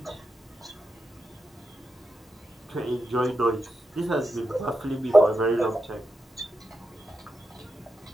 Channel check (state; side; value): normal; both; correlation 0.88